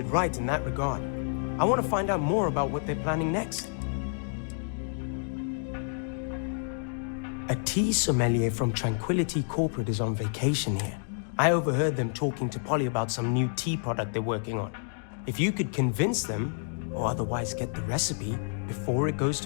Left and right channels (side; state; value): right; silent; digital silence